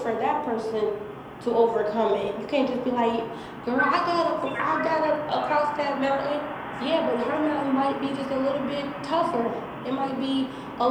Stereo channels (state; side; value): identical; both; correlation 1.00